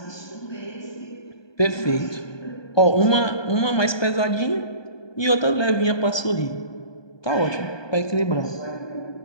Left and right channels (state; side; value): late; right; 1.2 ms